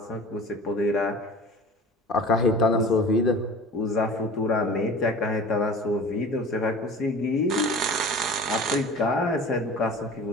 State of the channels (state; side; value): normal; both; correlation 0.40